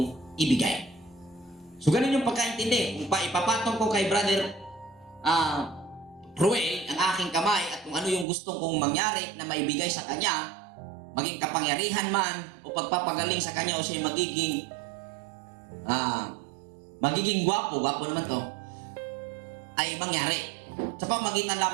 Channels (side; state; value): left; drops out; at 8.2 s